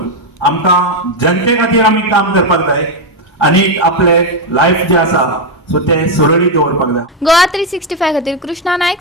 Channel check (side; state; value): both; normal; correlation 0.04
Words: आमकां जनते खातीर आमी काम करपाक जाय आनी आपले लायफ जे आसा सो ते सुरळीत दवरपाक जाय. गोवा 365 खातीर कृष्णा नायक,